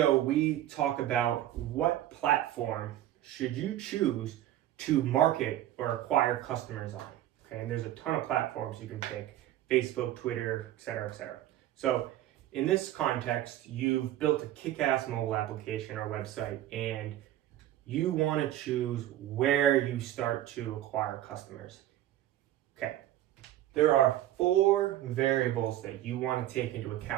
we talk about what platform should you choose to market or acquire customers on. Okay, and there's a ton of platforms you can pick: Facebook, Twitter, etc., etc. So in this context, you've built a kick-ass mobile application or website, and you want to choose where you start to acquire customers. Okay, there are 4 variables that you want to take into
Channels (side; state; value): left; quieter; 13.4 dB